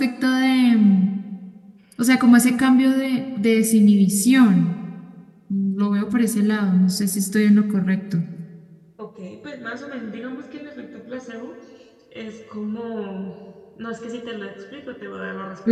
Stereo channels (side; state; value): both; identical; correlation 1.00